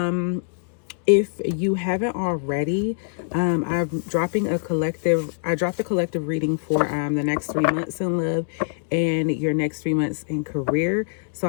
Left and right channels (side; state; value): right; silent; digital silence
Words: If you haven't already, I'm dropping I dropped a collective reading for the next 3 months in love and your next 3 months in career. So